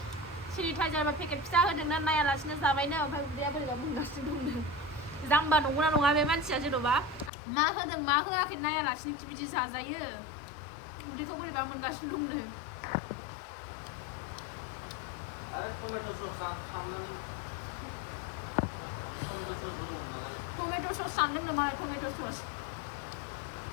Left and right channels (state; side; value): drops out; right; at 7.3 s